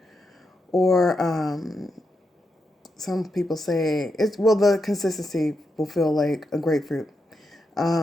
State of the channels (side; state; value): both; normal; correlation 0.85